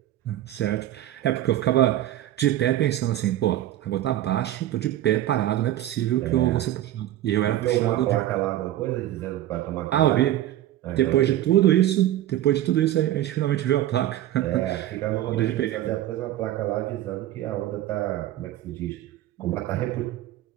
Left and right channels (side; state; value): left; quieter; 13.5 dB